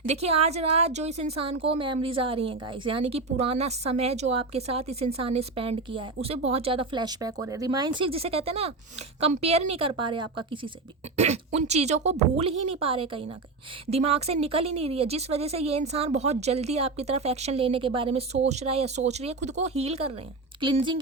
देखिए आज रात जो इस इंसान को मेमोरीज आ रही हैं गाइस, यानी कि पुराना समय जो आपके साथ इस इंसान ने स्पेंड किया है उसे बहुत ज़्यादा फ्लैशबैक हो रहे हैं। रिमाइंसिक जिसे कहते हैं ना, कंपेयर नहीं कर पा रहे आपका किसी से भी उन चीज़ों को भूल ही नहीं पा रहे कहीं ना कहीं, दिमाग से निकल ही नहीं रही है, जिस वजह से ये इंसान बहुत जल्दी आपकी तरफ एक्शन लेने के बारे में सोच रहा है या सोच रही है, खुद को हील कर रहे हैं, क्लिनजिंग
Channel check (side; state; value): left; quieter; 3.7 dB